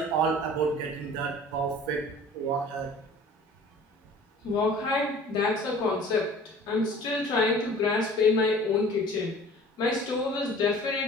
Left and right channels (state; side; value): normal; both; correlation 0.46